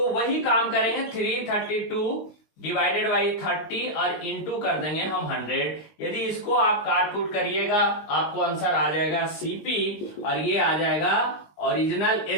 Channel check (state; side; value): late; right; 19 ms